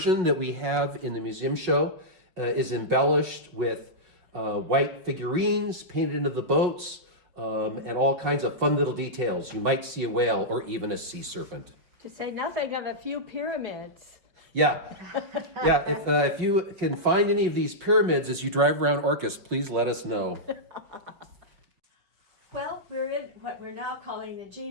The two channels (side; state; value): left; late; 5.5 ms